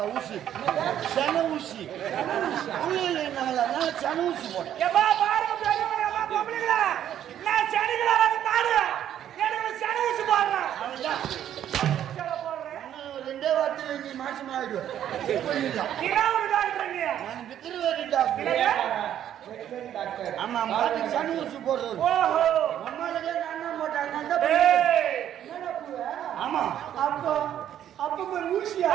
ஊசி சன ஊசி சன ஊசி போட்டேன். ரெண்டே வார்த்தை நீ மாசம் ஆயிடுவேன். ஆமா மாட்டுக்கு சன ஊசி போடுறது. ஆமா அப்போ அப்ப பேர் ஊசியா?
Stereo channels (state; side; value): quieter; left; 10.7 dB